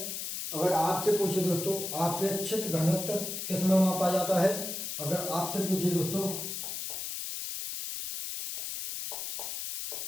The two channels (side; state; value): left; noise; hiss, 5 dB below the sound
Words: अगर आपसे पूछे दोस्तों आपेक्षिक घनत्व किस में मापा जाता है, अगर आपसे पूछे दोस्तों